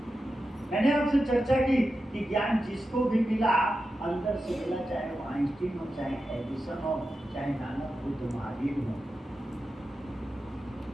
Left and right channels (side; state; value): both; normal; correlation 0.91